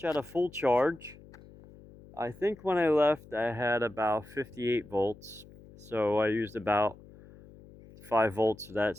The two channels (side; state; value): left; noise; hum, 21 dB below the sound